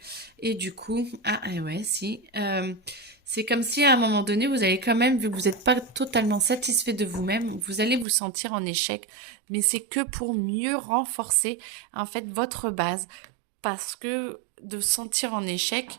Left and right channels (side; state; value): left; drops out; at 8.1 s